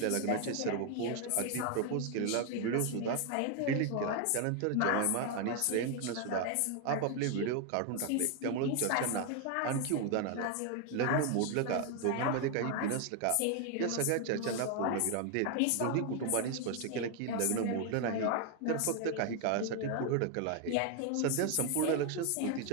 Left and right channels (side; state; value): both; different; correlation 0.01